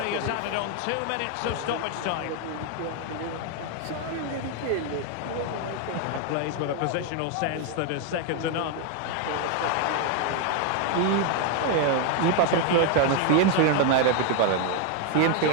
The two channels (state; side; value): different; both; correlation 0.01